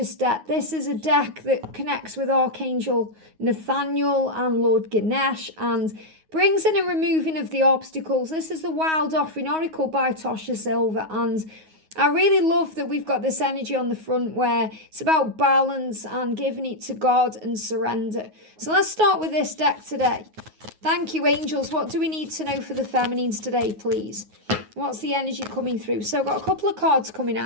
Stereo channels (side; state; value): left; late; 9.4 ms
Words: deck. This is a deck that connects with Archangel Nathaniel and Lord Ganesh and brings in a removing of the obstacles. This is the Wild Offering Oracle by Tosha Silver, and I really love that we've got this energy on the front where it's about balance and giving it to God and surrender. So let's start with this deck today. Thank you, angels. What do we need to know for the feminines today, please? What's the energy coming through? So I've got a couple of cards coming